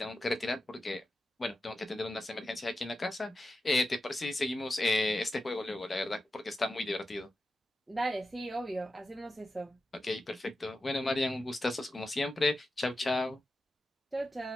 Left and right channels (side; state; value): both; normal; correlation 0.92